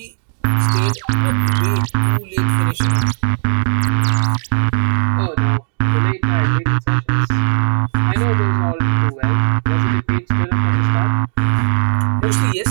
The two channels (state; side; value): silent; left; digital silence